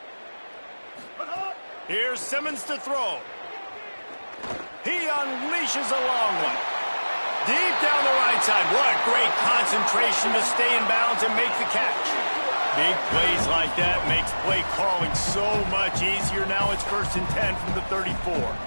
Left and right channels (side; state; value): both; inverted; correlation -1.00